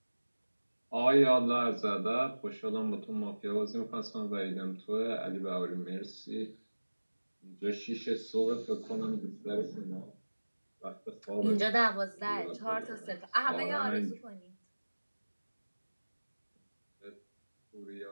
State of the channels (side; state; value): both; inverted; correlation -1.00